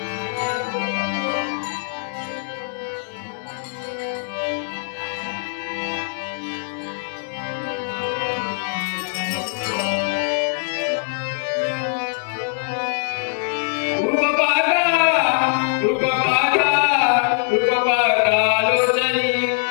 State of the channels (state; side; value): silent; right; digital silence